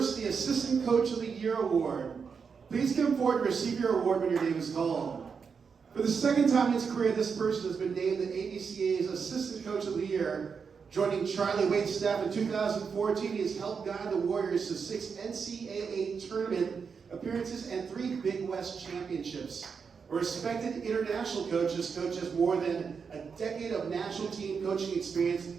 the Assistant Coach of the Year Award. Please come forward to receive your award when your name is called. For the second time in his career, this person has been named the AVCA's Assistant Coach of the Year. Joining Charlie Waite's staff in 2014, he has helped guide the Warriors to 6 NCAA tournament appearances and 3 Big West championships. A respected international coach, this coach has more than a decade of national team coaching experience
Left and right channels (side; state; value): left; quieter; 5.9 dB